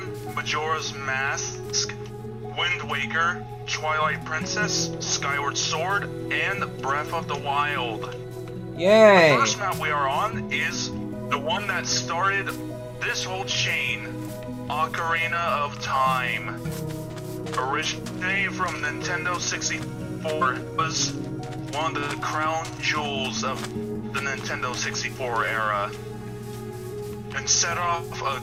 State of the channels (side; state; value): both; identical; correlation 1.00